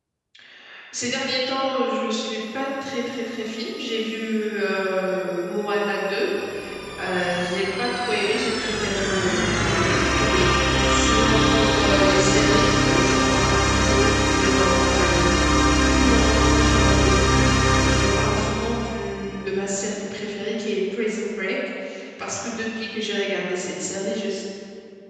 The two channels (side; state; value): both; identical; correlation 1.00